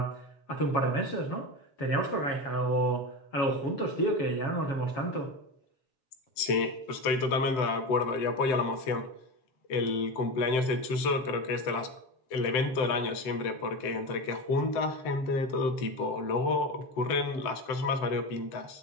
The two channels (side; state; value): right; late; 7.8 ms